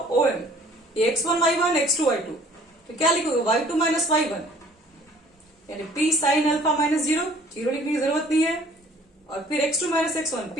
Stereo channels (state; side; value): normal; both; correlation 0.55